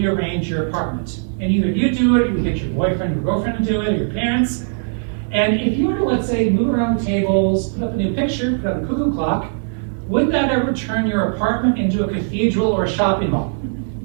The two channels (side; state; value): left; silent; 66 dB below the other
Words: your apartment, and either you do it, or you get your boyfriend or girlfriend to do it, or your parents. And if you were to, let's say, move around the tables, put up a new picture, put up a cuckoo clock, would that ever turn your apartment into a cathedral or a shopping mall?